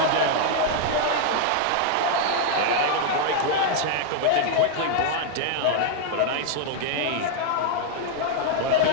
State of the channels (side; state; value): both; different; correlation 0.00